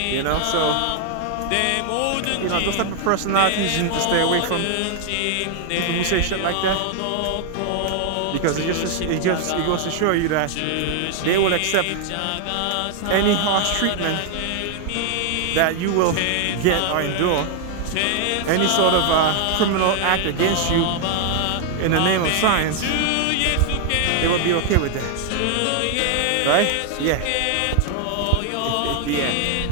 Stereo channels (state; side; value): different; both; correlation 0.00